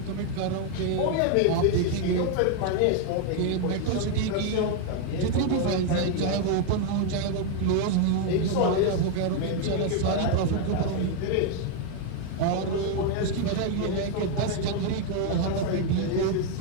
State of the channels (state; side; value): different; both; correlation 0.00